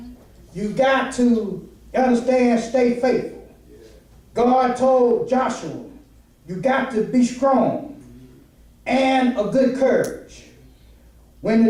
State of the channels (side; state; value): both; identical; correlation 1.00